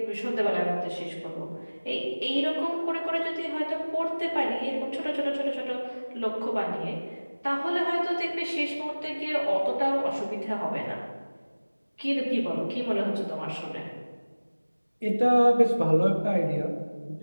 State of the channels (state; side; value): inverted; both; correlation -1.00